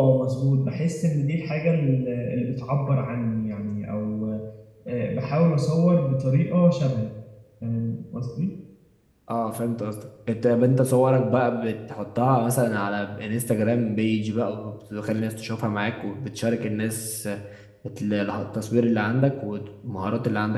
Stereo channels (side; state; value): both; identical; correlation 1.00